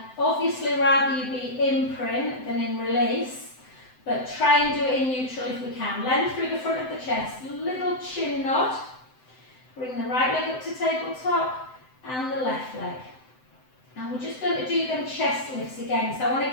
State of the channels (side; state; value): right; late; 7.8 ms